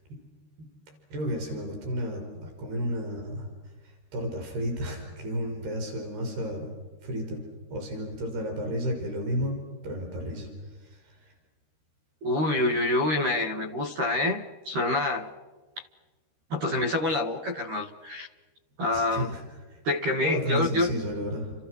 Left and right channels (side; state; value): left; late; 13 ms